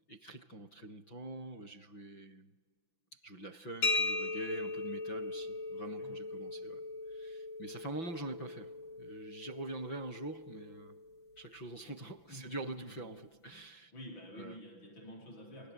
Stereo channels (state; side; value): late; right; 6.0 ms